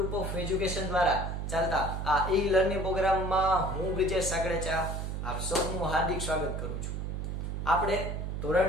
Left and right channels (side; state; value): right; noise; hum, 4 dB below the sound